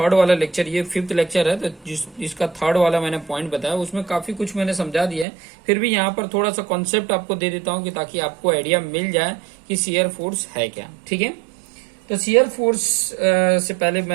वाला लेक्चर, ये 5th लेक्चर है, तो जिसका थर्ड वाला मैंने पॉइंट बताया उसमें काफी कुछ मैंने समझा दिया है। फिर भी यहाँ पर थोड़ा सा कॉन्सेप्ट आपको दे देता हूँ कि ताकि आपको आइडिया मिल जाए कि शियर फोर्स है क्या। ठीक है, तो शियर फोर्स से पहले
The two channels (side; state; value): left; drops out; at 5.2 s